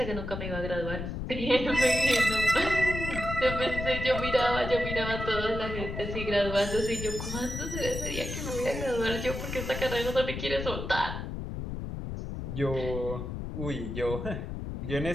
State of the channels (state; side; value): noise; left; rumble, 6 dB below the sound